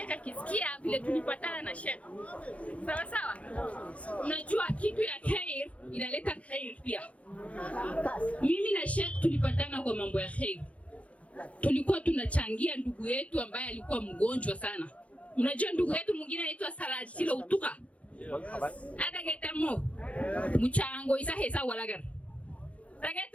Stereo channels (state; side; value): late; right; 0.065 ms